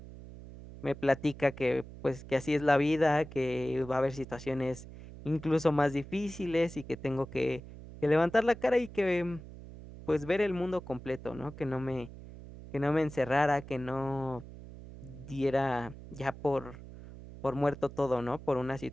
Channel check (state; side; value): noise; right; hum, 15 dB below the sound